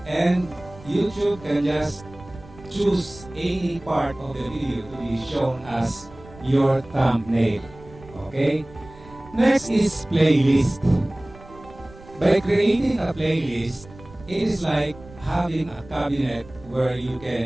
And YouTube can just choose any part of the video to be shown as your thumbnail. Okay? Next is playlist. By creating a playlist, it is like having a cabinet where you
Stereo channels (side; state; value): right; noise; rumble, 20 dB below the sound